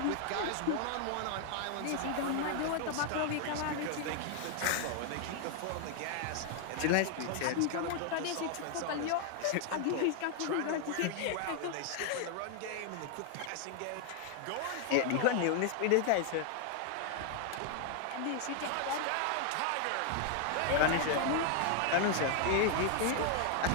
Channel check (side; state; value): both; different; correlation 0.00